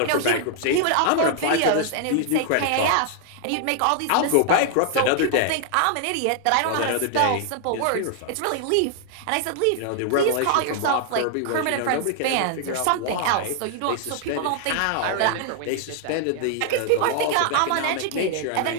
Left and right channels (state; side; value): different; both; correlation 0.00